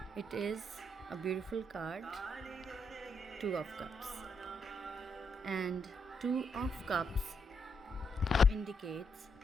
It is a beautiful card, Two of Cups. And Two of Cups indicates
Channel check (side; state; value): both; normal; correlation 0.78